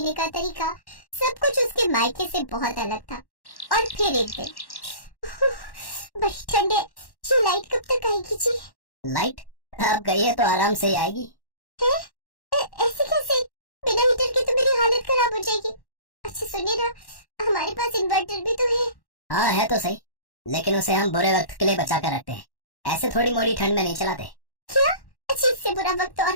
का तरीका, सब कुछ उसके मायके से बहुत अलग था। और फिर एक दिन, बड़ी ठंडे, ये लाइट कब तक आएगी जी? लाइट अब गई है तो आराम से ही आएगी। है? ऐसे कैसे? बिना हीटर के तो मेरी हालत खराब हो जाएगी। अच्छा सुनिए ना, हमारे पास इन्वर्टर भी तो है। हाँ है तो सही, लेकिन उसे हम बुरे वक्त के लिए बचा कर रखते हैं, ऐसे थोड़ी मोड़ी ठंड में नहीं चलाते। क्या? अच्छा, इससे बुरा वक्त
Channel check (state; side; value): late; right; 1.1 ms